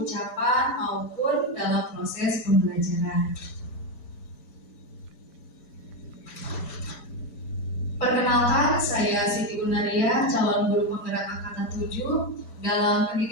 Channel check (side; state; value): right; late; 5.1 ms